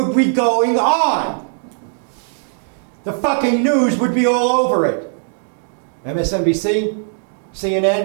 be going on? The fucking news would be all over it. MSNBC,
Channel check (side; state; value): left; silent; digital silence